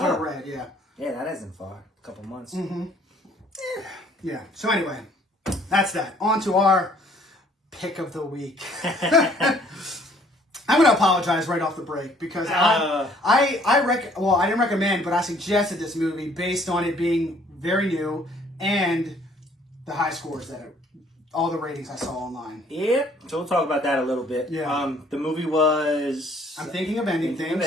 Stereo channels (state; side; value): normal; both; correlation 0.60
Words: I read. Yeah. Yeah, that isn't far. A couple months. Yeah. So anyway, that's that. On to our pick of the week. I'm going to apologize right off the break because I didn't recommend, but I suggested this movie based on it being very new and the high scores that all the ratings I saw online. Yep. So we'll talk about that a little bit. Yeah. The movie was... I'm Thinking of Ending